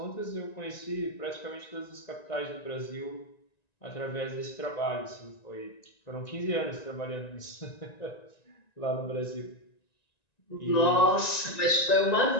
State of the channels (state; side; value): late; right; 1.9 ms